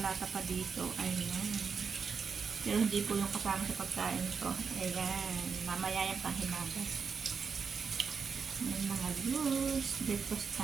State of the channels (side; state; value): left; quieter; 5.8 dB